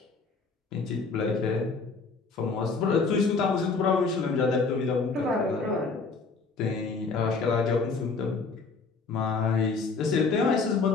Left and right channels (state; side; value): quieter; right; 4.4 dB